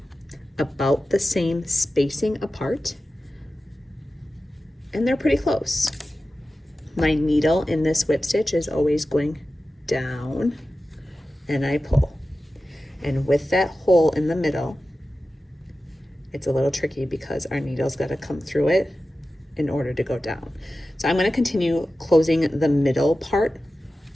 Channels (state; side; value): normal; both; correlation 0.94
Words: about the same spacing apart, and they're pretty close. My needle in this whip stitch is always going down, and I pull. And with that hole in the middle, it's a little tricky because our needle's got to come through it in order to go down. So I'm going to continue closing the middle part,